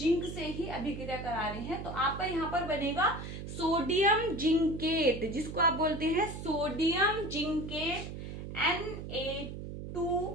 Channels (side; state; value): right; noise; hum, 8 dB below the sound